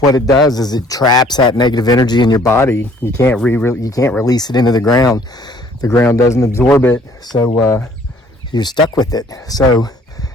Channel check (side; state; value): both; normal; correlation 0.58